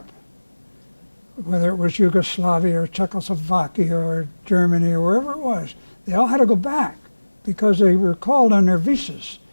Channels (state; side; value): inverted; both; correlation -1.00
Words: whether it was Yugoslavia or Czechoslovakia or Germany or wherever it was. They all had to go back because they were called on their visas.